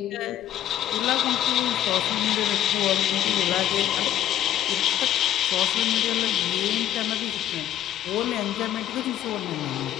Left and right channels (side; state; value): right; quieter; 11.9 dB